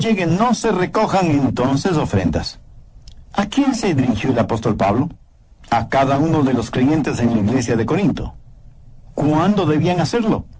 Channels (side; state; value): both; identical; correlation 1.00